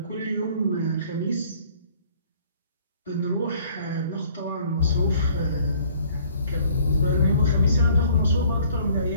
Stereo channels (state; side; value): inverted; both; correlation -0.56